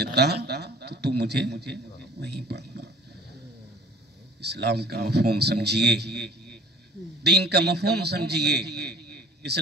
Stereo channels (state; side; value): normal; both; correlation 0.49